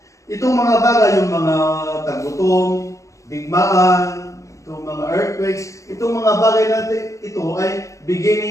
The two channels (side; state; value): right; late; 0.15 ms